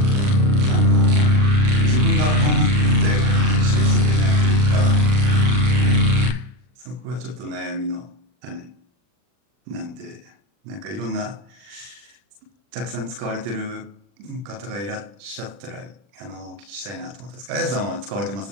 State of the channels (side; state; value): left; late; 40 ms